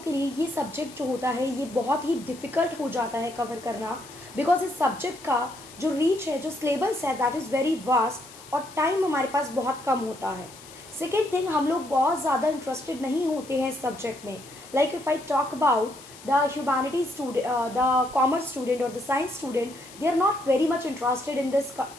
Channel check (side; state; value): left; noise; hiss, 19 dB below the sound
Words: के लिए ये subject जो होता है ये बहुत ही डिफ़िकल्ट हो जाता है कवर करना, बिकॉज इस सब्जेक्ट का जो रीच है, जो सिलेबस है, दैट इज़ वेरी वास्ट और टाइम हमारे पास बहुत कम होता है. सेकेंड थिंग, हम लोग बहुत ज़्यादा इंटरेस्टेड नहीं होते हैं इस सब्जेक्ट में. Like if I talk about the humanities student, the commerce student or the science student, they are not very much interested in this